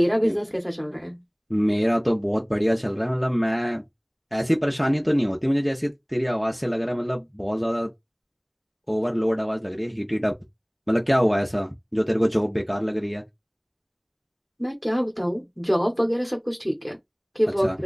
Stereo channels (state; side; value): identical; both; correlation 1.00